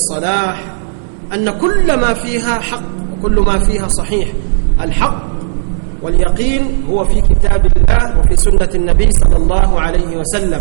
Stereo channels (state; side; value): silent; left; digital silence